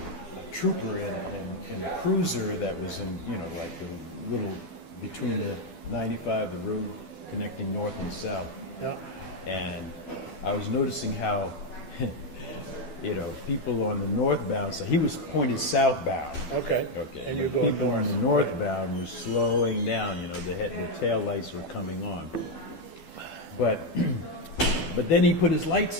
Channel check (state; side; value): late; right; 12 ms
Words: trooper in a cruiser that was in, like the little, between the 95, the road connecting north and south. Yeah. And I was noticing how, people on the northbound, so he was pointed southbound. Okay. And you're going people on the northbound were slowing down, the tail lights were coming on. But then he put his